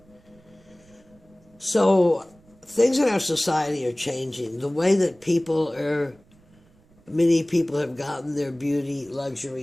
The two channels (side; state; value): right; noise; rumble, 29 dB below the sound